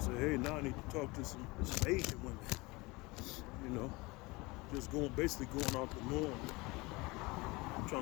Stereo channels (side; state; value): right; quieter; 23.8 dB